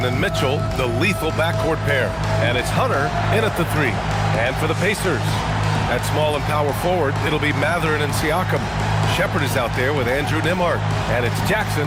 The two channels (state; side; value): identical; both; correlation 1.00